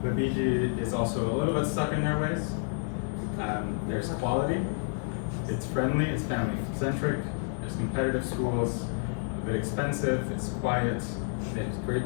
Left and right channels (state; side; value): silent; right; 58 dB below the other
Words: The BG is also a little bit stuck in their ways. There's quality, it's friendly, it's family-centric, there's competitive schools, a bit expensive, it's quiet, there's